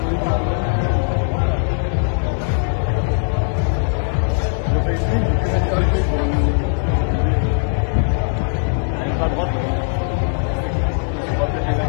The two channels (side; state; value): right; silent; 59 dB below the other